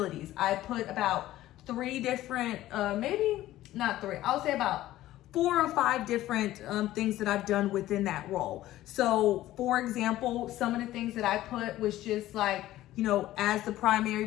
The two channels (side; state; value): right; quieter; 14.9 dB